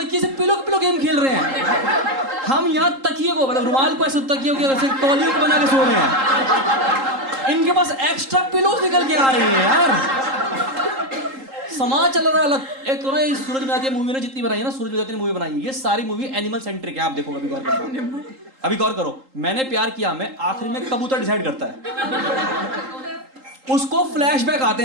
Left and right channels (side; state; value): left; late; 3.8 ms